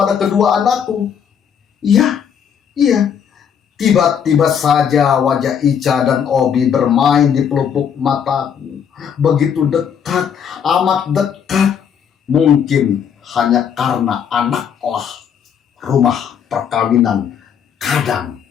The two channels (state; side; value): quieter; right; 7.8 dB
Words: kedua anakku? Iya. Tiba-tiba saja wajah Ica dan Obi bermain di pelupuk mataku. Begitu dekat, amat dekat. Mungkin hanya karena anaklah rumah perkawinan kadang